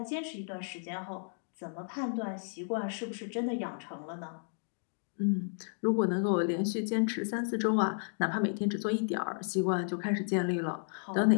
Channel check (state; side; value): silent; right; digital silence